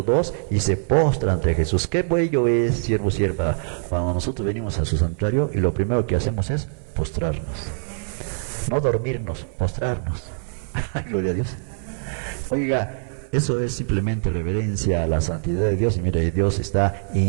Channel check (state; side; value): silent; left; 59 dB below the other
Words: 2, y se postra ante Jesús. Qué bello es, siervo, sierva, cuando nosotros venimos a su santuario y lo primero que hacemos es postrarnos. No dormirnos, postrarnos. Gloria a Dios. Oiga, eso es simplemente reverencia a la santidad de Dios. Y mire, Dios